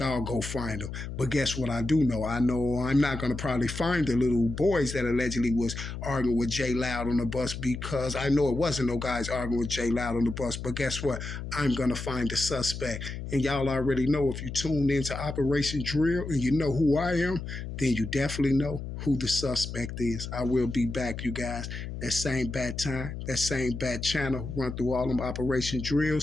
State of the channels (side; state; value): left; noise; hum, 7 dB below the sound